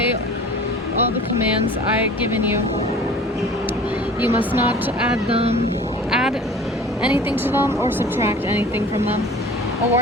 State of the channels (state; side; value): normal; both; correlation 0.44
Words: all the commands I have given you. You must not add anything to them or subtract anything from them. A